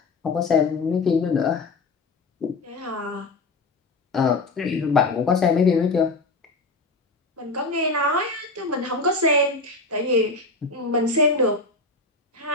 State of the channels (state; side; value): quieter; right; 3.3 dB